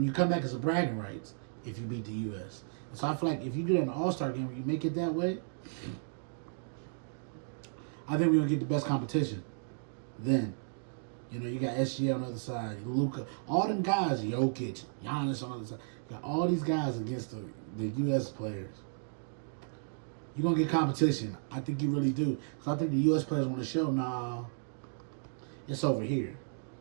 you come back, it's a bragging rights if you beat the U.S. And so I feel like if you do that in an All-Star game where you make it that way, I think we're gonna get the best competition. Then, you got SGA on the other side, Luka, all them guys, Jokic, Giannis on the other side. You got all these guys against the U.S. players. You're going to get competition. I think you really do. Because I think the U.S. players want to show, nah, it's over here.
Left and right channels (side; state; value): left; silent; digital silence